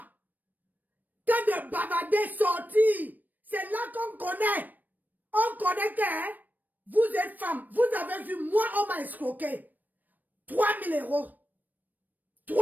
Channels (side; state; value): left; late; 0.086 ms